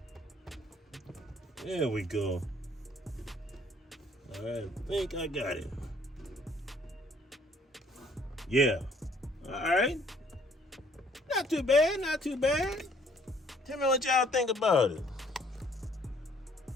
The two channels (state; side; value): normal; both; correlation 0.61